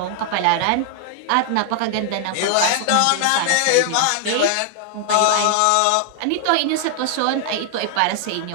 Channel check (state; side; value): different; both; correlation 0.00